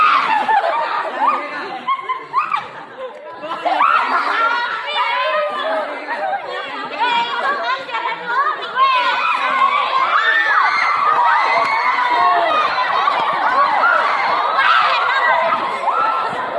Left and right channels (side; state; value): both; identical; correlation 1.00